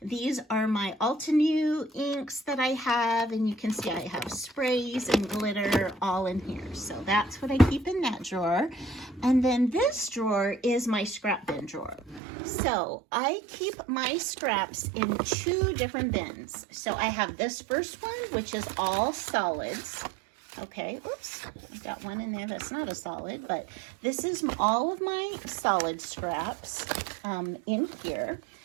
These are my Altenew inks that I have, and you can see I have sprays and glitter all in here. So that's what I keep in that drawer. And then this drawer is my scrap bin drawer. So I keep my scraps in 2 different bins. So I have this first one, which is all solids. Okay, oops, I got one in there that's not a solid, but this is all of my solid scraps in here.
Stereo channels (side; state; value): left; drops out; at 12.2 s